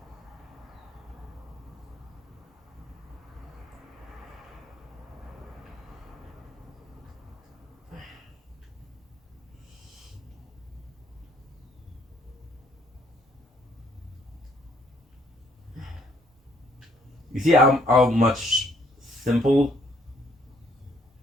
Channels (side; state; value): both; normal; correlation 0.65